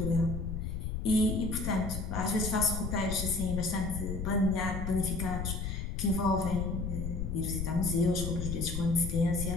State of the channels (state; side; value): noise; left; rumble, 3 dB below the sound